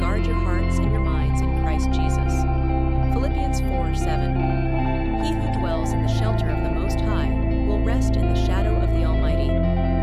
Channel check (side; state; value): both; identical; correlation 1.00